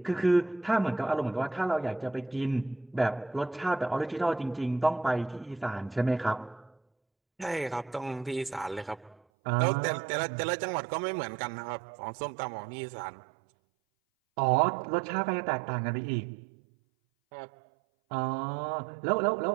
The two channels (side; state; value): left; drops out; at 9.2 s